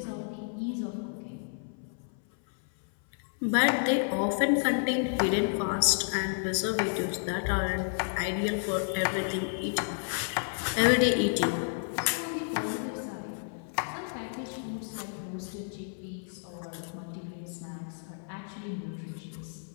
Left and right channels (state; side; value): silent; right; 57 dB below the other